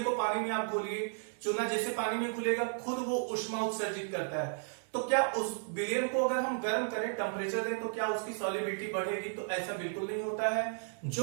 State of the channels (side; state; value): left; silent; 55 dB below the other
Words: को पानी में आप घोलिए, चूना जैसे पानी में घुलेगा खुद वो ऊष्मा उत्सर्जित करता है, तो क्या उस विलयन को अगर हम गर्म करें, टेम्परेचर दें, तो क्या उसकी सॉल्युबिलिटी बढ़ेगी? तो ऐसा बिल्कुल नहीं होता है।